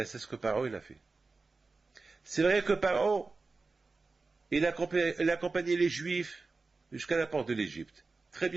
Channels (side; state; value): left; quieter; 3.9 dB